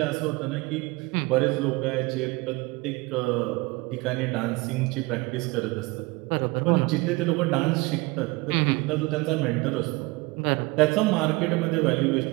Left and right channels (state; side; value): quieter; left; 23.8 dB